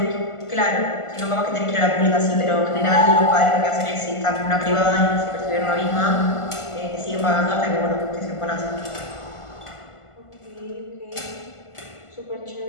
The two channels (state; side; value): late; right; 1.5 ms